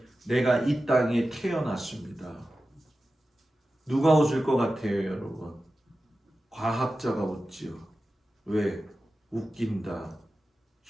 내가 이 땅에 태어났습니다. 누가 웃을 것 같아요, 여러분? 과학자가 웃지요. 왜? 웃긴다.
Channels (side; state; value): both; normal; correlation 0.93